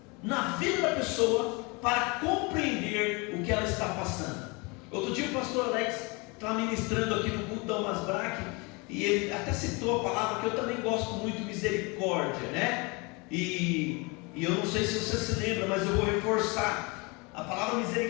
na vida da pessoa para compreender o que ela está passando. Outro dia o pastor Alex estava ministrando aqui no culto da Almas Braque, e ele até citou a palavra que eu também gosto muito, misericórdia, né? E eu não sei se você se lembra, mas eu vou reforçar. A palavra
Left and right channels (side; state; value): right; quieter; 28.3 dB